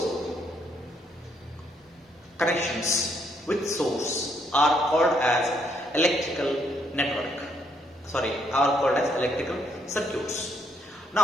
connections with source are called as electrical network. Are called as electrical circuits.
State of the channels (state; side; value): normal; both; correlation 0.72